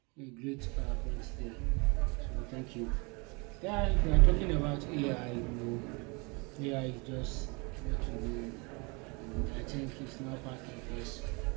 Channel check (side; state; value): left; quieter; 29.8 dB